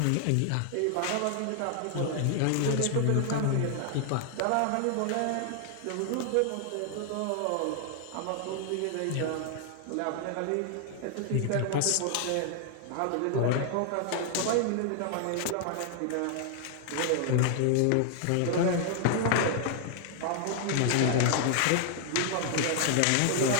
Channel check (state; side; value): different; both; correlation 0.00